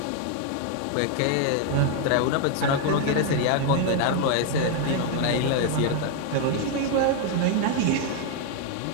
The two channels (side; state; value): both; different; correlation 0.00